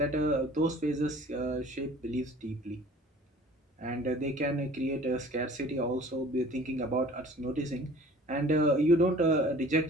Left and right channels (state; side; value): normal; both; correlation 0.48